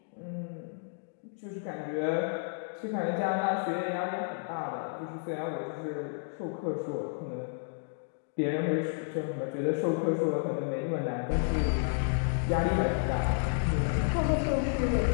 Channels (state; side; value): silent; right; digital silence